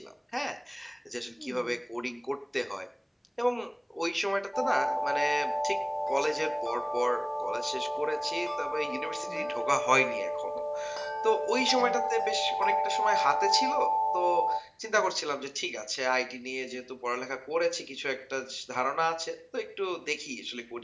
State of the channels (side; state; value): both; identical; correlation 1.00